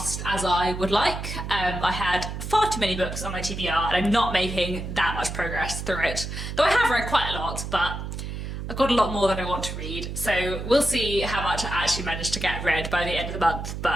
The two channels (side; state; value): right; noise; hum, 6 dB below the sound